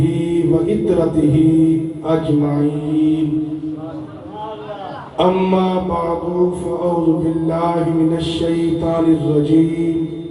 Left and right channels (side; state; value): both; identical; correlation 1.00